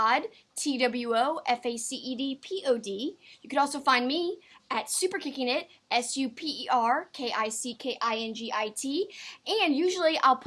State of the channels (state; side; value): identical; both; correlation 1.00